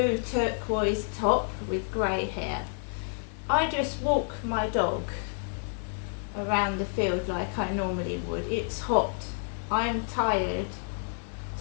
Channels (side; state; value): right; silent; 58 dB below the other